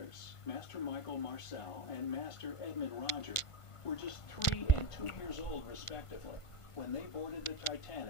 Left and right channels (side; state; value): right; late; 1.5 ms